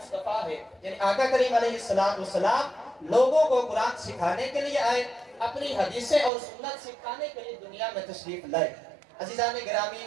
ہے، یعنی آقا کریم علیہ السلام لوگوں کو قرآن سکھانے کے لیے آئے، اپنی حدیثیں اور سنت سکھانے کے لیے دنیا میں تشریف لائے۔ عزیزان گرامی،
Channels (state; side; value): drops out; left; at 6.3 s